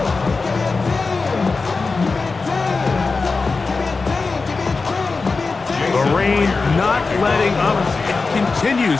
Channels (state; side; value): quieter; right; 4.1 dB